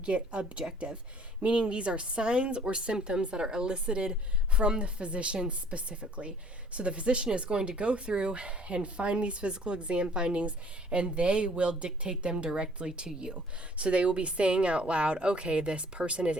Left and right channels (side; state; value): both; normal; correlation 0.56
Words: get objective, meaning these are signs or symptoms that are elicited from the physician specifically. So the physician is going to go through and find these physical exam findings, and they will dictate them directly to you. So they will be saying out loud, okay, this person is